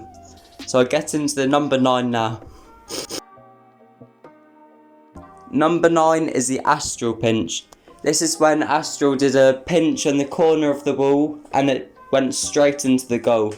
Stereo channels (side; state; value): both; identical; correlation 1.00